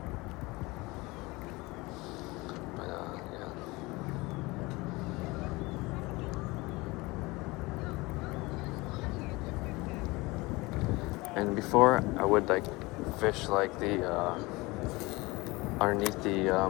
But yeah. And before I would like fish like the underneath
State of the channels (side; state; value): right; quieter; 23.0 dB